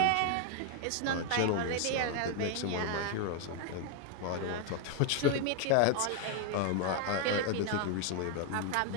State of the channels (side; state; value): both; different; correlation 0.00